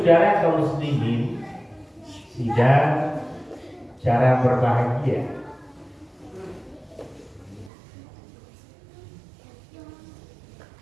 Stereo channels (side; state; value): left; drops out; at 7.7 s